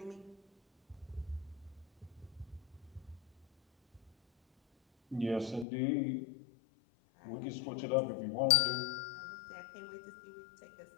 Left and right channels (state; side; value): drops out; right; at 5.7 s